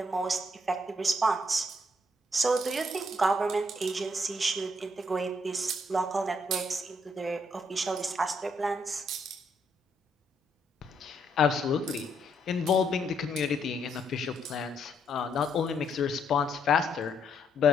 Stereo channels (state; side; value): normal; both; correlation 0.73